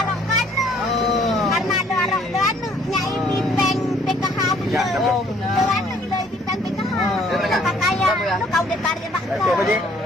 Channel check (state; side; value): normal; both; correlation 0.61